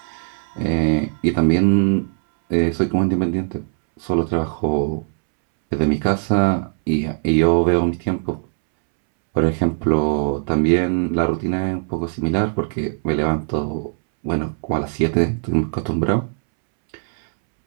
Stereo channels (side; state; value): left; silent; 66 dB below the other